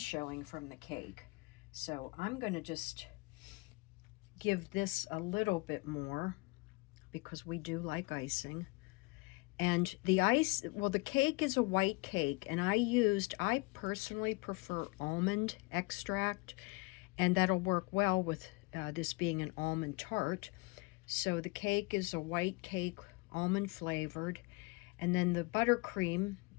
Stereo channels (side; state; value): right; quieter; 25.2 dB